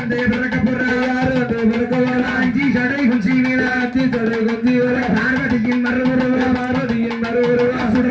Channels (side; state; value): both; identical; correlation 1.00